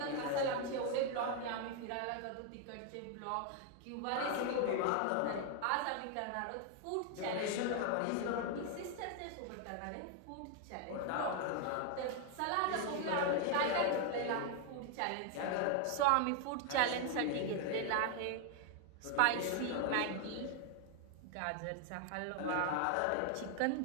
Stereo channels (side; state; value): both; different; correlation 0.00